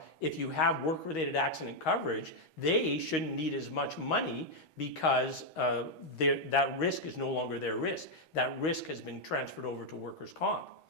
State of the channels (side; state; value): right; late; 6.2 ms